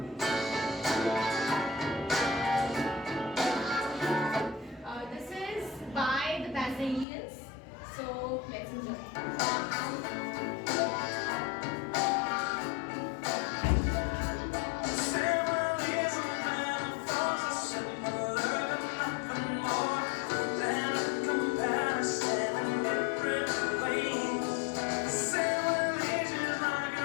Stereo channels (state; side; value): drops out; right; at 7.1 s